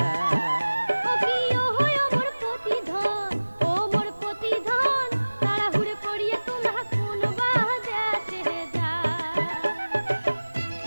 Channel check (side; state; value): both; inverted; correlation -1.00